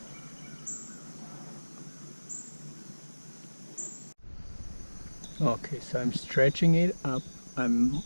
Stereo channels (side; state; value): both; inverted; correlation -1.00